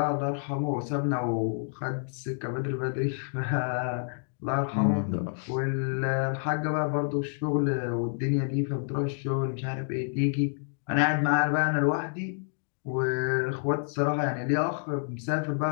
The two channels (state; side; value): silent; right; digital silence